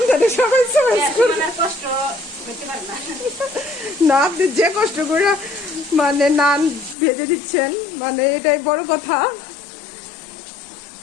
সবাই চয়েস করুন। কষ্ট করতে পারে না। না, আপনি যে কষ্ট করে মানে নান ভেজে দিচ্ছেন, মানে এটাই বড় কথা।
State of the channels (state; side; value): drops out; right; at 7.0 s